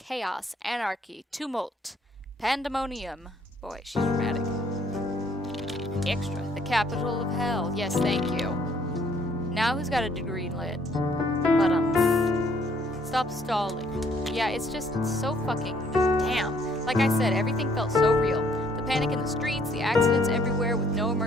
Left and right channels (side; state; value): both; normal; correlation 0.64